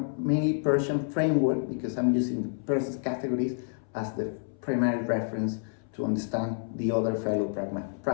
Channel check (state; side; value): silent; right; 59 dB below the other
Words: Peircean framework because I'm using Peirce's categories as the primary reference to understand the other fellow